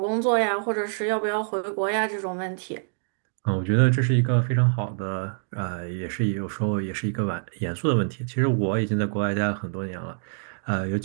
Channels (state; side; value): silent; left; digital silence